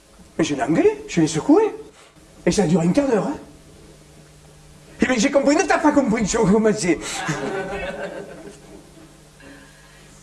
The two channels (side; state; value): both; identical; correlation 1.00